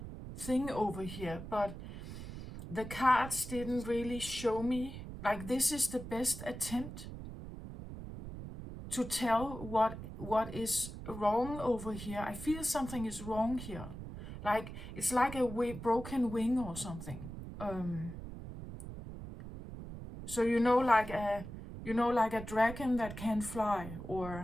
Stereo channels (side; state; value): right; noise; rumble, 10 dB below the sound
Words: thing over here, but the cards didn't really show me, like this is the best attempt to tell what is wrong over here. I feel something is wrong here. Like it's like a broken wing or something. So like a dragon that can fly